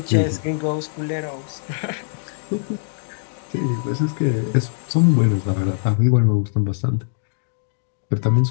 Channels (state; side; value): silent; right; digital silence